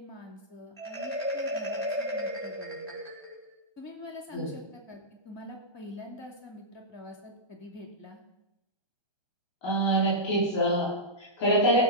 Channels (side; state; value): right; late; 1.2 ms